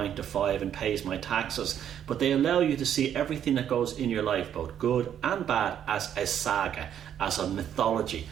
to 5 and pays my taxes, but they allow you to see everything that goes in your life, both good and bad, as a saga, as a mythology,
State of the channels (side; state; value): left; quieter; 9.6 dB